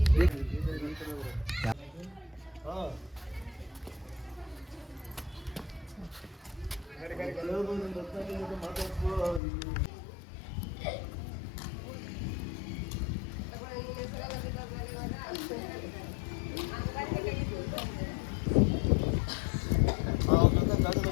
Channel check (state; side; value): drops out; right; at 9.4 s